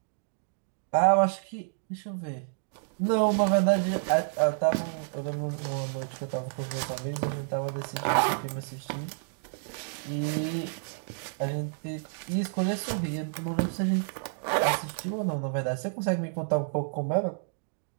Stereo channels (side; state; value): left; silent; digital silence